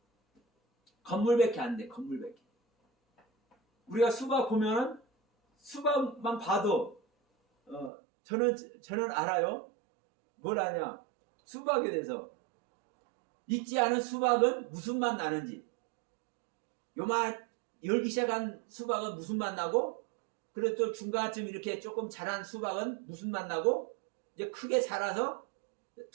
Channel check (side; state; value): left; drops out; at 7.9 s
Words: 건물밖에 안 돼. 건물밖에. 우리가 수박 보면은 수박만 봐도 저는 알아요. 뭘 아냐? 수박에 대해서. 익지 않은 수박은 무슨 맛 나는지. 요만 열기 시작한 수박은 무슨 맛 나고, 그리고 또 중간쯤 이렇게 조금 자란 수박은 무슨 맛 나고, 이제 크게 자라서